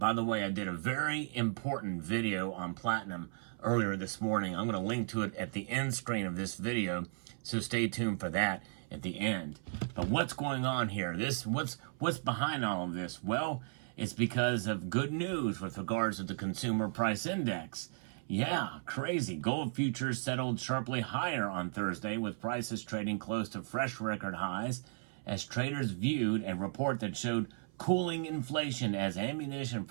the way, I did a very important video on platinum earlier this morning. I'm going to link to it at the end screen of this video, so stay tuned for that at the end. But what's going on here? What's behind all of this? Well, it's because of good news with regards to the consumer price index. Yeah, crazy. Gold futures settled sharply higher on Thursday, with prices trading close to fresh record highs as traders viewed a report that showed cooling inflation as ammunition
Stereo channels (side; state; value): left; silent; 54 dB below the other